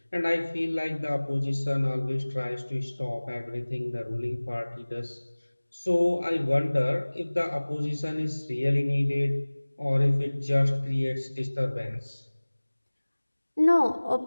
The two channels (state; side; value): inverted; both; correlation -1.00